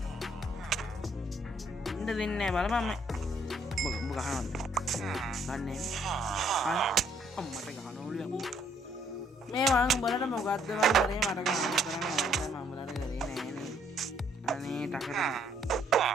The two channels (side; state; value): both; normal; correlation 0.67